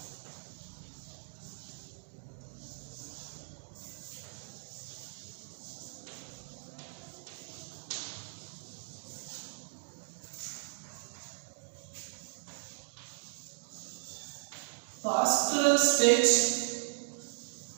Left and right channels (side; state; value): left; silent; digital silence